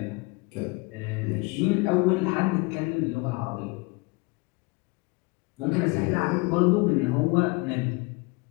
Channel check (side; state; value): right; quieter; 26.5 dB